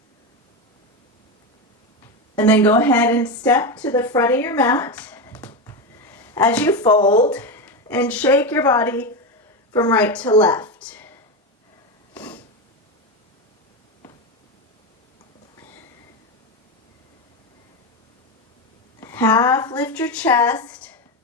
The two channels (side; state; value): both; normal; correlation 0.14